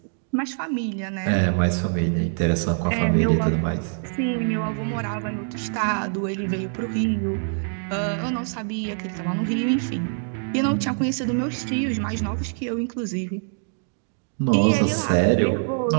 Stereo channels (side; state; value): left; silent; 62 dB below the other